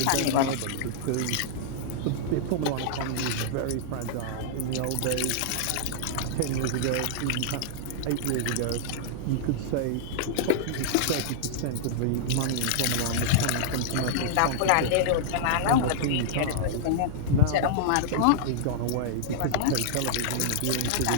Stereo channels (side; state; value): both; different; correlation -0.01